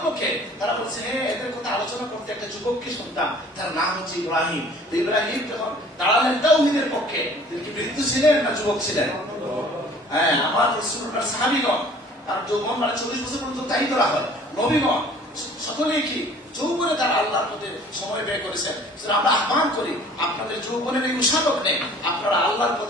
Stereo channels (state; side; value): normal; both; correlation 0.51